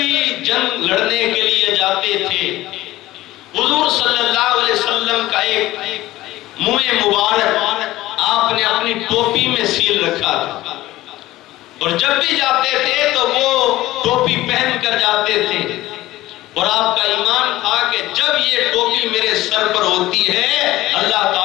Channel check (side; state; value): right; quieter; 16.7 dB